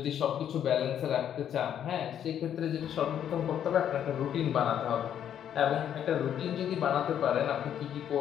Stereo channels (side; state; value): right; quieter; 9.7 dB